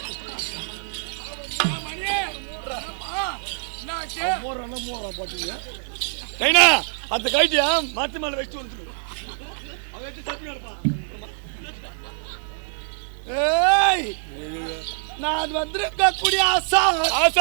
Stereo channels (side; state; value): left; silent; 57 dB below the other